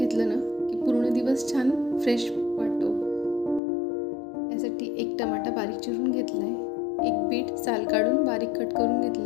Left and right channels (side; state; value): right; drops out; at 3.6 s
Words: ना की पूर्ण दिवस छान फ्रेश वाटतो. यासाठी एक टमाटा बारीक चिरून घेतला आहे, एक बीट साल काढून बारीक कट करून